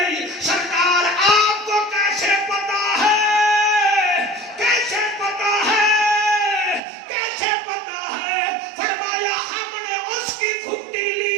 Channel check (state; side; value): drops out; left; at 6.8 s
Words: سرکار آپ کو کیسے پتا ہے کیسے پتا ہے کیسے پتا ہے فرمایا ہم نے اس کی گھٹی